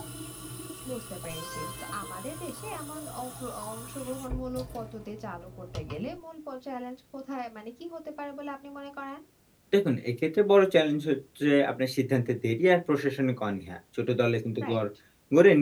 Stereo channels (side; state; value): both; identical; correlation 1.00